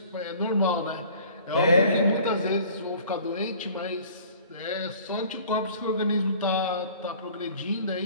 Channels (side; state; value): both; inverted; correlation -0.49